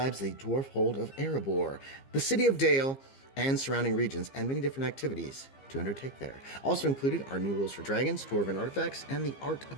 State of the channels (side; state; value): right; late; 15 ms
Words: the dwarf hold of Erebor, the city of Dale, and surrounding regions, and many different activities to undertake there. Also included are new rules for dragons, dwarven artifacts, and the art